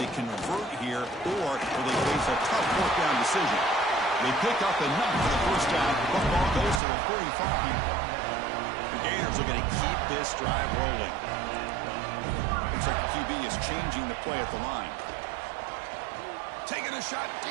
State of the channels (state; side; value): drops out; left; at 6.8 s